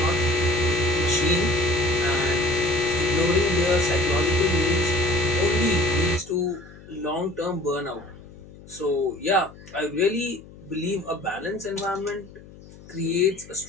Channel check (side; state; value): left; noise; hum, 20 dB below the sound